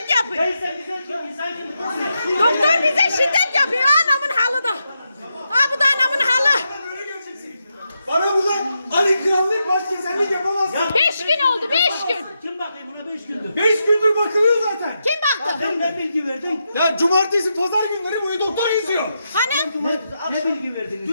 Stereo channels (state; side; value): inverted; both; correlation -0.85